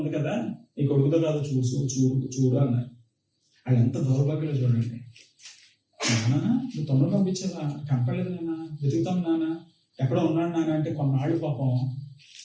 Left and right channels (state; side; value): identical; both; correlation 1.00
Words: కదా, నీ కొడుకుతో కాదు చూడు అన్నారు. వాళ్ళు ఎంత దౌర్భాగ్యంలో చూడండి. నాన్న నువ్వు తమ్ముడు పంపించావా? కనపడలేదు నాన్న, వెతుకుతాం నాన్న, ఎక్కడ ఉన్నాడు నాన్న అంటే కొన్నాళ్ళు పాపం